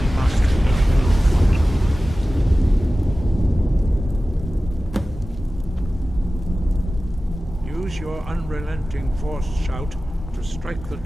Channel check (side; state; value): both; normal; correlation 0.96